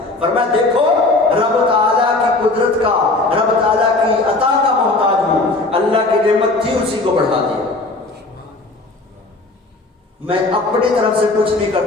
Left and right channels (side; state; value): right; quieter; 3.2 dB